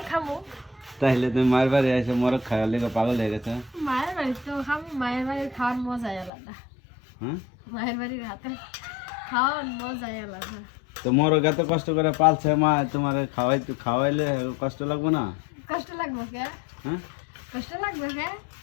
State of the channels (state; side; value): drops out; right; at 6.3 s